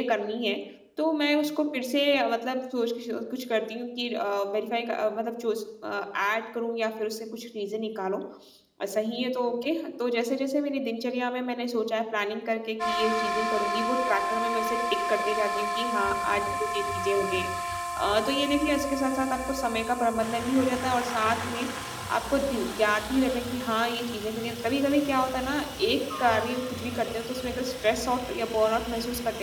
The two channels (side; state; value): both; identical; correlation 1.00